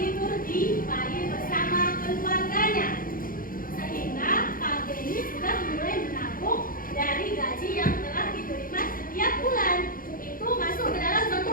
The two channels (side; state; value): right; late; 0.41 ms